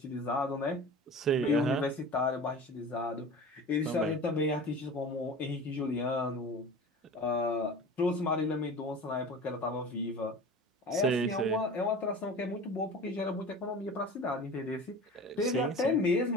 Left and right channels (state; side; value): normal; both; correlation 0.36